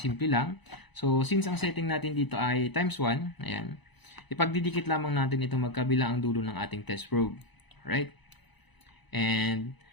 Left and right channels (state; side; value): late; right; 1.0 ms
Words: lang. So, since ang setting natin dito ay times 1, ayan, ipagdidikit lamang natin itong magkabila ang dulo ng ating test probe. Alright? And